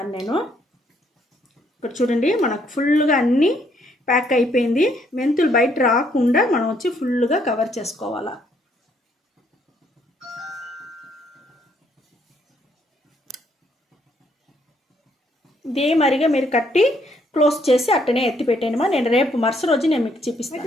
నేను ఇక్కడ చూడండి, మనకు ఫుల్గా అన్నీ ప్యాక్ అయిపోయింది. మెంతులు బయట రాకుండా మనం వచ్చి ఫుల్గా కవర్ చేసుకోవాలా. ఇదే మరిగా మీరు కట్టి క్లోజ్ చేసి అట్టనే ఎత్తి పెట్టేయమా. నేను రేపు మరుసటి రోజు నేను మీకు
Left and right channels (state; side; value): normal; both; correlation 0.70